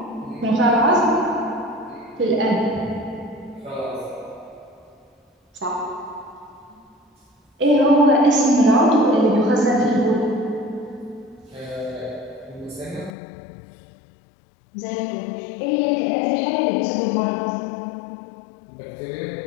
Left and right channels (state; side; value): drops out; right; at 13.1 s